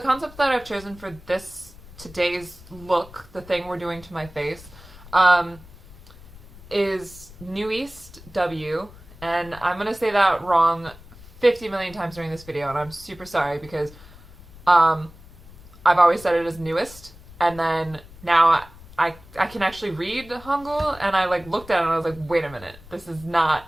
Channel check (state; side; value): noise; left; rumble, 20 dB below the sound